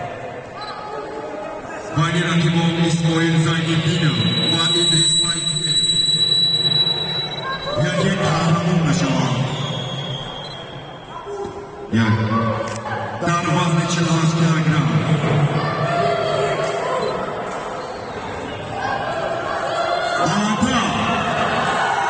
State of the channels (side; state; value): both; identical; correlation 1.00